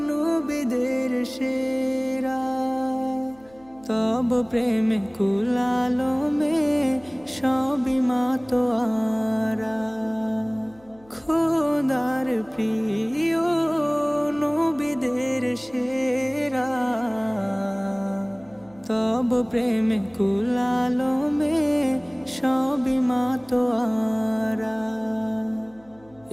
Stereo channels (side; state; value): left; noise; hum, 28 dB below the sound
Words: নবীদের সেরা, তব প্রেমে কুলালমে সবই মাতোয়ারা। খোদার প্রিয় নবীদের সেরা, তব প্রেমে কুলালমে সবই মাতোয়ারা।